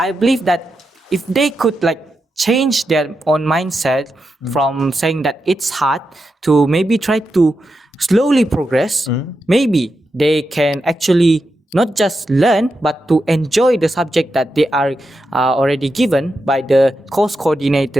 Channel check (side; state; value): both; normal; correlation 0.87